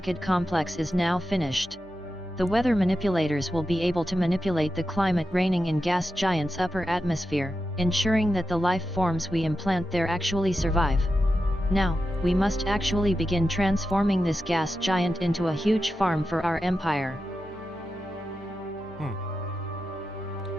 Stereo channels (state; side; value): normal; both; correlation 0.90